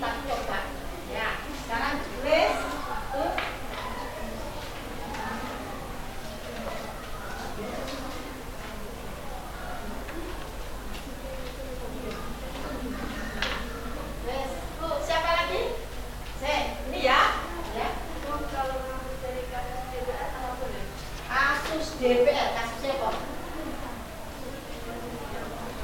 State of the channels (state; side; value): identical; both; correlation 1.00